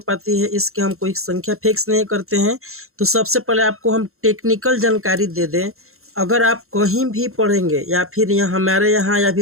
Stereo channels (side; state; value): left; late; 0.62 ms